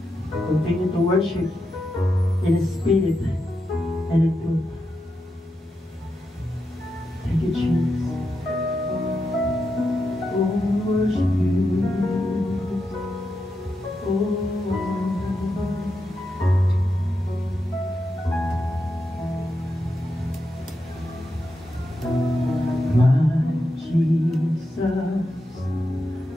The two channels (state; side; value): normal; both; correlation 0.86